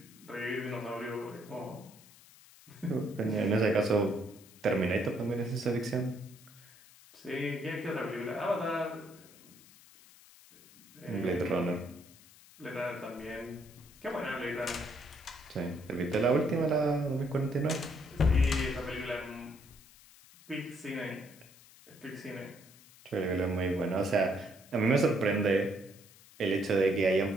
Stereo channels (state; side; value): noise; left; hiss, 23 dB below the sound